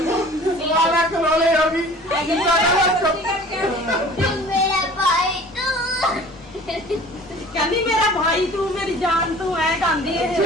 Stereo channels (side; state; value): both; normal; correlation 0.46